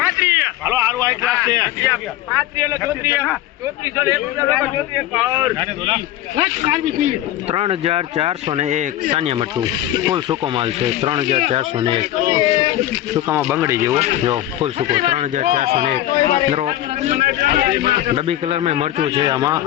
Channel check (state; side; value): quieter; right; 13.7 dB